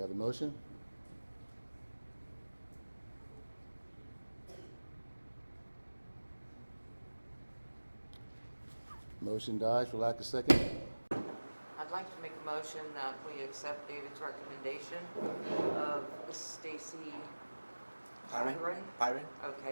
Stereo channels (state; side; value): inverted; both; correlation -1.00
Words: a motion? Motion dies for lack of second. I'd like to make a motion that we accept David's recommendation of Stacy Byron.